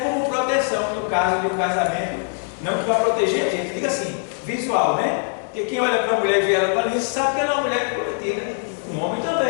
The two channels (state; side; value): silent; right; 58 dB below the other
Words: proteção no caso de um casamento, não que vai proteger a gente, diga assim, visual, né? Porque quem olha para a mulher e vê ela para isso sabe que ela é uma mulher prometida, um homem